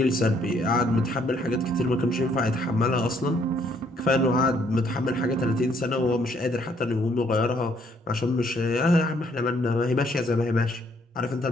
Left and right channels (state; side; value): normal; both; correlation 0.67